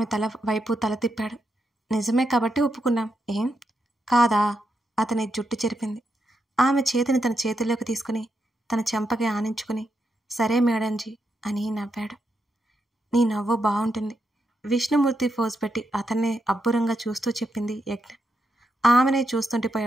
తల వైపు తల తిప్పాడు. నిజమే కాబట్టి ఒప్పుకున్నాం. ఏం కాదా? అతని జుట్టు చెరిపింది. ఆమె చేతిని తన చేతుల్లోకి తీసుకుని తన చెంపకి ఆనించుకుని, సరే మేడంజీ అని నవ్వాడు. నీ నవ్వు బాగుంటుంది. విష్ణుమూర్తి ఫోజ్ పెట్టి అతన్నే అబ్బురంగా చూస్తూ చెప్పింది యజ్ఞ. ఆమెనే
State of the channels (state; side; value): normal; both; correlation 0.83